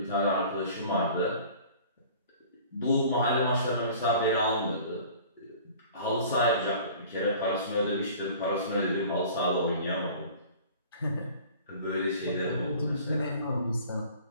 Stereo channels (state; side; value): inverted; both; correlation -0.46